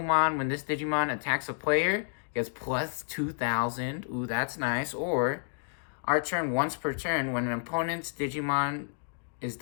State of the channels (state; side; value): silent; right; digital silence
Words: when this Digimon attacks a player, gets plus 2,000. Ooh, that's nice. Or our turn once per turn, when an opponent's Digimon is